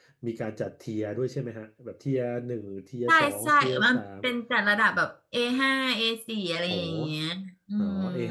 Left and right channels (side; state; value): both; identical; correlation 1.00